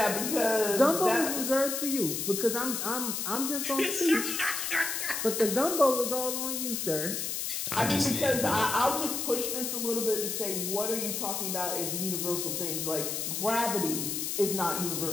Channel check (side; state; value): left; noise; hiss, 2 dB below the sound